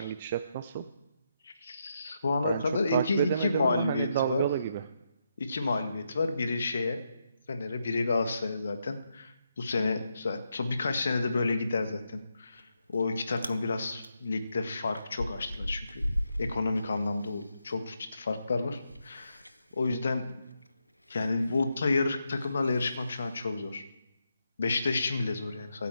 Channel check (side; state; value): both; inverted; correlation -0.82